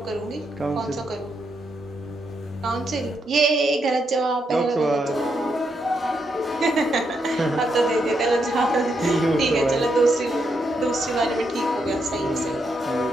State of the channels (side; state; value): both; normal; correlation 0.80